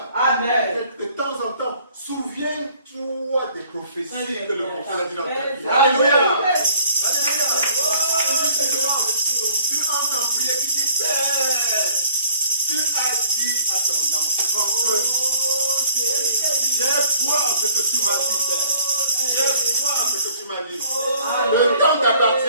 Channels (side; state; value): both; inverted; correlation -0.54